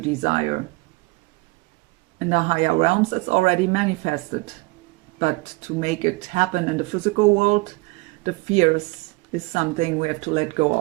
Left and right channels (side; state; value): left; quieter; 24.8 dB